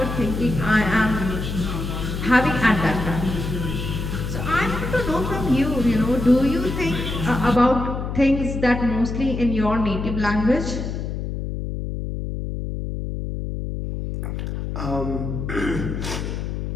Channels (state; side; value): noise; left; hum, 4 dB below the sound